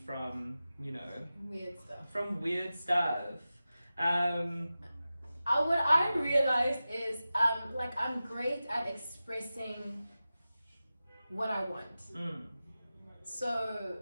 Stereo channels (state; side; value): inverted; both; correlation -0.94